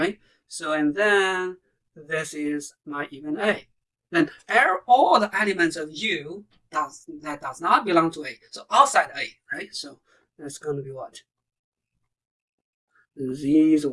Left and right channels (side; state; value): both; identical; correlation 1.00